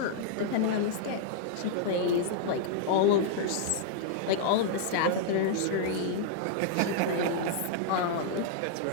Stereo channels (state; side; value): different; both; correlation -0.01